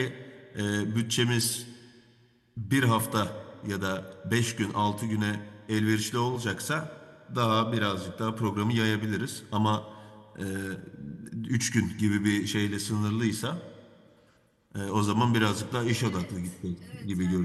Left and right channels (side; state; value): both; identical; correlation 1.00